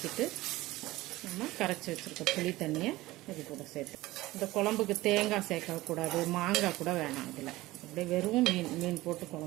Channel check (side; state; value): left; quieter; 18.4 dB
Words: நம்ம கரைச்சி வச்சுருக்க புளி தண்ணியை இது கூட சேர்த்து. இந்த குழம்புக்கு தேங்காய் சேர்க்கக்கூடாது, மாங்காய் கூட வேணாம். இதில் அப்படியே வெறும் மீன் போட்டு